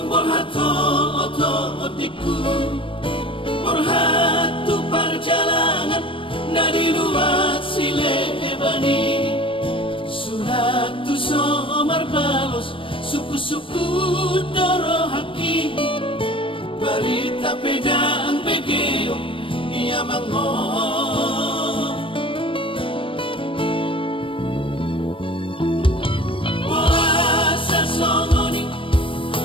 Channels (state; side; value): late; right; 0.25 ms